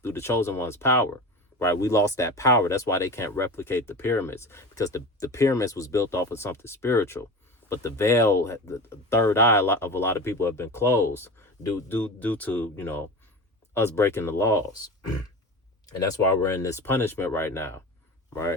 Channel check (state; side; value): normal; both; correlation 0.30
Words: through the chosen one's power. Right, we lost that power. That's why they can't replicate the pyramids, because the pyramids was built off of something spiritual. But the veil, the third eye of a lot of people have been closed due to us breaking the laws. And that's why we're in this punishment right now,